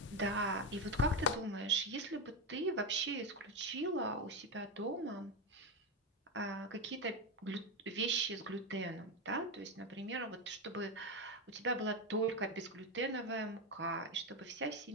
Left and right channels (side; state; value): both; normal; correlation 0.12